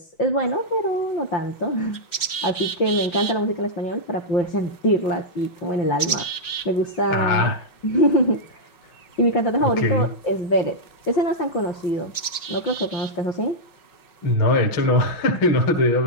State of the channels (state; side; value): late; right; 5.5 ms